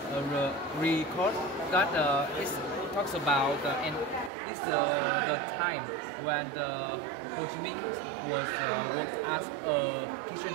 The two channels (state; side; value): drops out; left; at 4.3 s